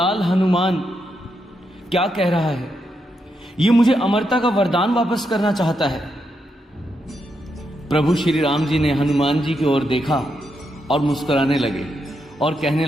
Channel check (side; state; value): both; normal; correlation 0.82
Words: हनुमान क्या कह रहा है। ये मुझे अमरता का वरदान वापस करना चाहता है। प्रभु श्री राम जी ने हनुमान जी की ओर देखा और मुस्कुराने लगे और कहने